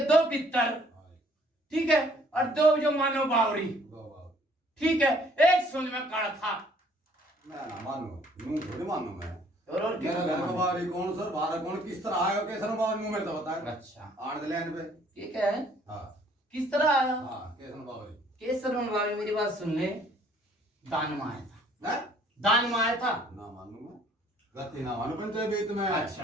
2 पितर ठीक है और 2 जो मानो बावरी। 2 बावरी ठीक है एक सोच में काला था मैं ना मानू यूं थोड़ी मानू मैं और मेरा घर का बावरी कौन सर बाहर कौन किस तरह आया कैसे बावरी नु मेरे तो बता। अच्छा आड़ दे लेन पे ठीक है हां किस तरह आया? हां कैसे बावरी केसर बावरी मेरी बात सुन ले दान में आया था। है दान में आया था ना मानू मैं गति ना मानू पंचायत बीत में।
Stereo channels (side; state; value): both; normal; correlation 0.60